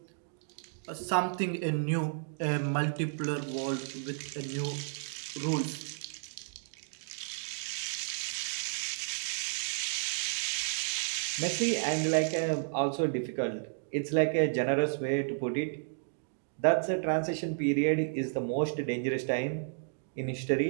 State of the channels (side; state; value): left; silent; digital silence